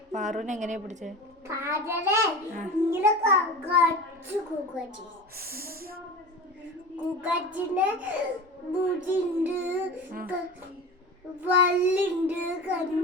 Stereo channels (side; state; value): both; normal; correlation 0.32